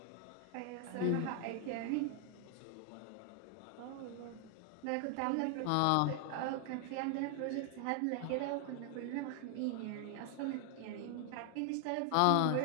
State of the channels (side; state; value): both; different; correlation 0.00